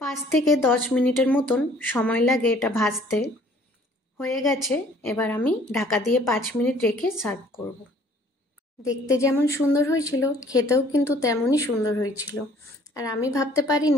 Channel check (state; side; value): normal; both; correlation 0.56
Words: 5 থেকে 10 মিনিটের মতন সময় লাগে এটা ভাজতে। হয়ে গেছে, এবার আমি ঢাকা দিয়ে 5 মিনিট রেখে সার্ভ করব। দেখতে যেমন সুন্দর হয়েছিল, খেতেও কিন্তু তেমনই সুন্দর হয়েছিল। আর আমি ভাবতে